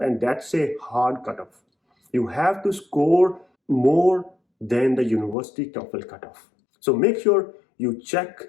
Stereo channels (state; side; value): drops out; right; at 5.4 s